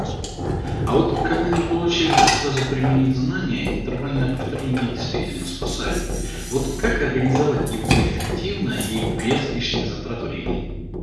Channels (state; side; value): identical; both; correlation 1.00